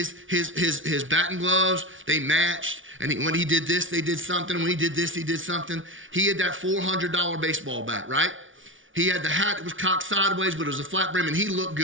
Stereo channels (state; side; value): late; left; 0.57 ms